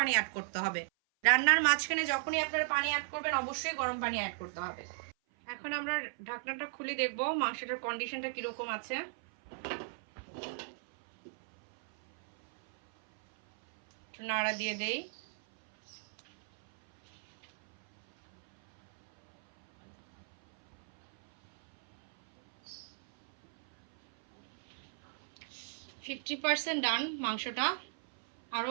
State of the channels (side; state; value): left; silent; 54 dB below the other